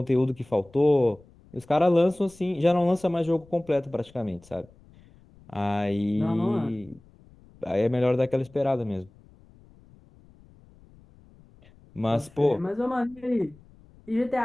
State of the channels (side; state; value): left; noise; rumble, 26 dB below the sound